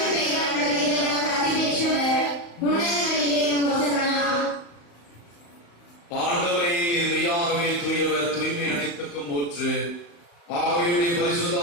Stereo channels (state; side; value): late; right; 35 ms